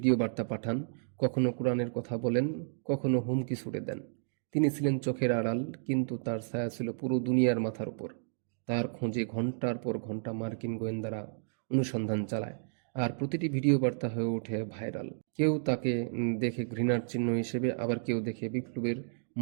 বার্তা পাঠান, কখনো কোরআনের কথা বলেন, কখনো হুমকি ছুড়ে দেন। তিনি ছিলেন চোখের আড়াল, কিন্তু তার ছায়া ছিল পুরো দুনিয়ার মাথার উপর। তার খোঁজে ঘন্টার পর ঘন্টা মার্কিন গোয়েন্দারা অনুসন্ধান চালায়, আর প্রতিটি ভিডিও বার্তা হয়ে ওঠে ভাইরাল। কেউ তাকে দেখে ঘৃণার চিহ্ন হিসেবে, আবার কেউ দেখে বিপ্লবের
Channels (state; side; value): silent; left; digital silence